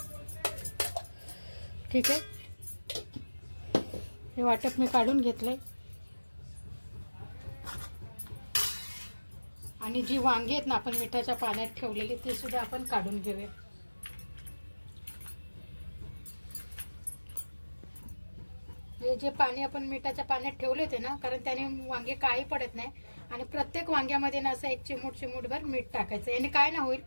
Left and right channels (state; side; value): inverted; both; correlation -1.00